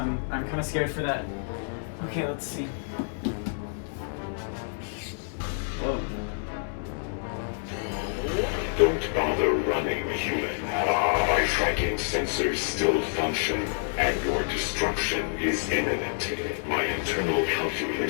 I'm kind of scared for that. Okay, let's see. Whoa. Don't bother running, human. My tracking sensors still function, and your destruction is imminent. My internal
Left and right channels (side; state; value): right; silent; digital silence